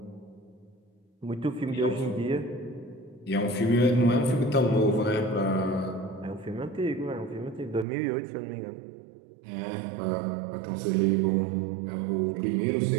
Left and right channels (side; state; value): left; drops out; at 7.9 s